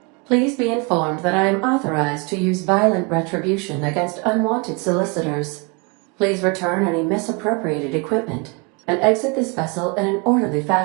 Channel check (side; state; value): left; quieter; 30.3 dB